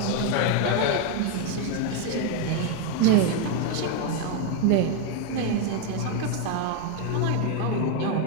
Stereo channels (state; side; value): different; both; correlation 0.01